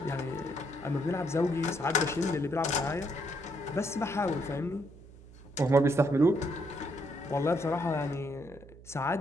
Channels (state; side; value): noise; right; hum, 20 dB below the sound